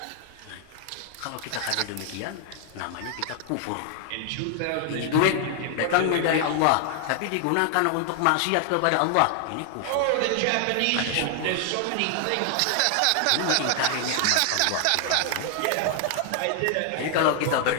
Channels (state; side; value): different; both; correlation 0.00